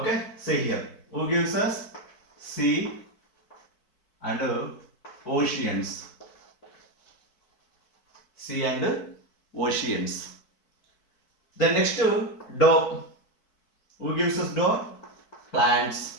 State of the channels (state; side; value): late; right; 4.6 ms